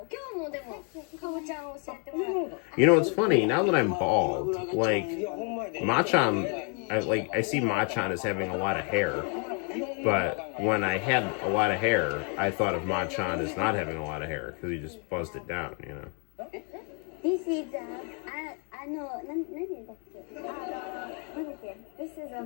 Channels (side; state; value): right; quieter; 38.5 dB